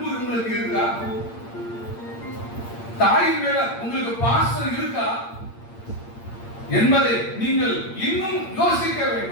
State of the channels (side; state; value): right; late; 8.7 ms